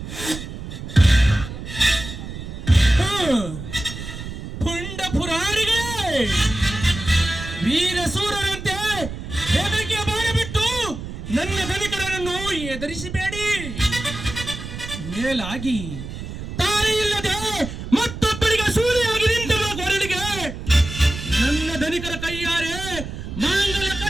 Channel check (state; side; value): noise; right; rumble, 9 dB below the sound